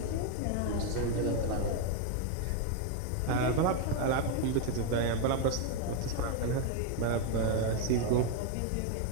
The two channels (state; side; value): different; both; correlation 0.01